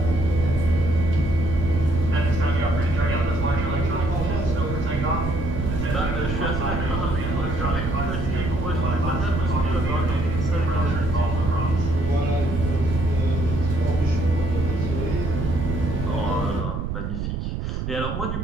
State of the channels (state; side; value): noise; right; rumble, 3 dB below the sound